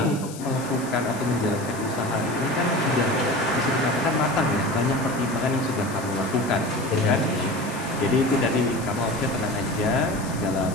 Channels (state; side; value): noise; left; hiss, 15 dB below the sound